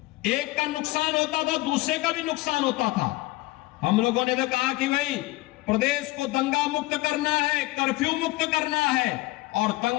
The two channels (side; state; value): right; quieter; 19.9 dB